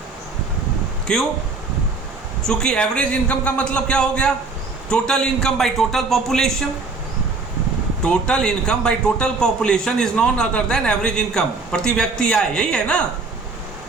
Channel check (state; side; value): quieter; left; 4.0 dB